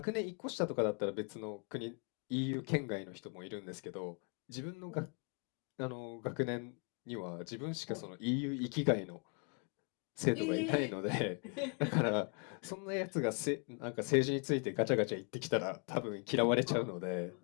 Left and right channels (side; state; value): right; quieter; 37.4 dB